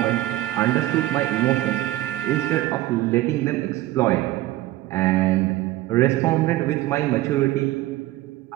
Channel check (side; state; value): left; quieter; 16.2 dB